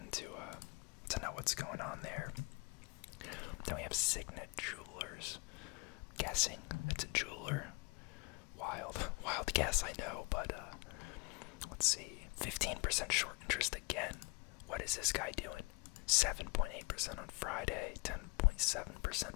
to know what's going on there. Then we have Signet Jewelers. Guessing it's a jeweler. Wild guess, I know, but let's see. 15% short interest again. What is this guy doing? 7.8% on Friday, 10.7%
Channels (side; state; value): right; quieter; 27.0 dB